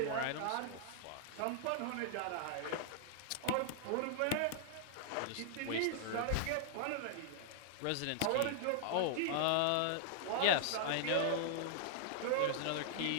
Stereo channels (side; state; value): both; different; correlation -0.01